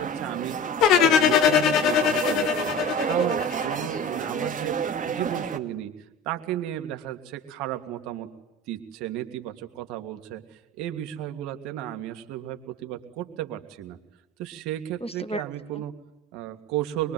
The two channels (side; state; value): both; normal; correlation 0.35